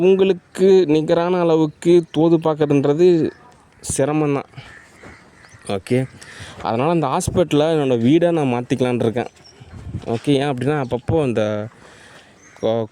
நிகரான அளவுக்கு தோது பார்க்குறதுன்றது சிரமந்தான். ஓகே, அதனால் அந்த ஹாஸ்பிட்டலை என்னோடய வீடை நான் மாற்றிக்கலான் இருக்கேன். ஓகே, ஏன் அப்படின்னா அப்பப்போ அந்த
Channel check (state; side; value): identical; both; correlation 1.00